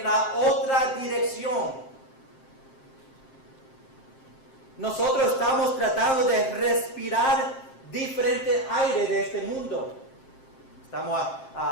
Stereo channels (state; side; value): late; right; 7.6 ms